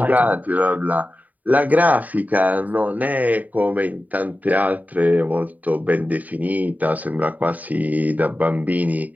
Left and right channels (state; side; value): late; left; 0.075 ms